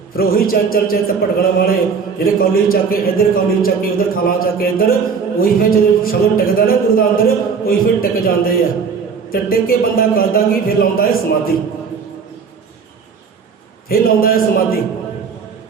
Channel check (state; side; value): quieter; left; 5.8 dB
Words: ਫਿਰ ਉਹੀ ਚੰਚਲ ਚਿੱਤ ਭਟਕਣ ਵਾਲੇ ਜਿਹੜੇ ਕੌਲੀ ਚੱਕ ਕੇ ਇੱਧਰ, ਕੌਲੀ ਚੱਕ ਕੇ ਉੱਧਰ, ਥਾਲਾਂ ਚੱਕ ਕੇ ਇੱਧਰ, ਉਹੀ ਫਿਰ ਜਦੋਂ ਸ਼ਬਦ ਟਿਕਦਾ ਨਾ ਗੁਰੂ ਦਾ ਅੰਦਰ, ਉਹੀ ਫਿਰ ਟਿਕ ਜਾਂਦੇ ਆ। ਤੇ ਟਿਕ ਕੇ ਬੰਦਾ ਕਰਦਾ ਕੀ? ਫਿਰ ਲਾਉਂਦਾ ਹੈ ਸਮਾਧੀ, ਫਿਰ ਲਾਉਂਦਾ ਹੈ ਸਮਾਧੀ।